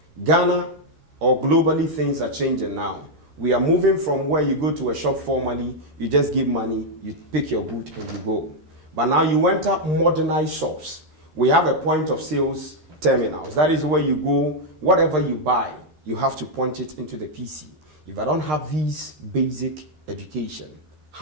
Ghana or globally, things are changing now. We are moving from where you go to a shop formally, you just give money, you pick your good and you go. But now you enter modernized shops. We have a point of sales terminals. That is where you go, whatever you buy, you have to punch it into the PC. If I don't have these basic education,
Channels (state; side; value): late; left; 13 ms